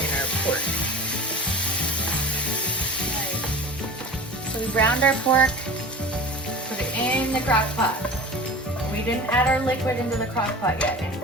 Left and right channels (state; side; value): normal; both; correlation 0.37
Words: pork. Right. So we browned our pork, put it in the crock pot. We didn't add our liquid into the crock pot yet,